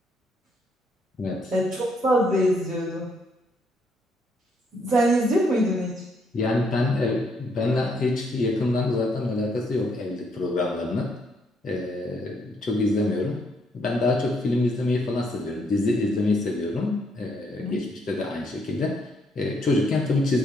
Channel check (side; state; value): both; normal; correlation 0.72